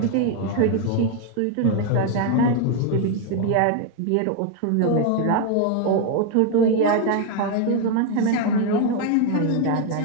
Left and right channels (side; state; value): both; different; correlation 0.01